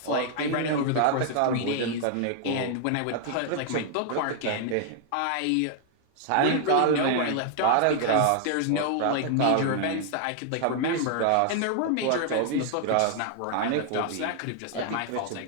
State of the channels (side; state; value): both; different; correlation 0.00